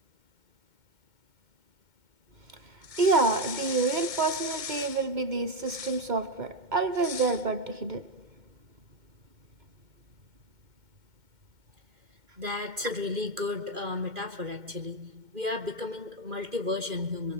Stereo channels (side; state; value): left; late; 2.1 ms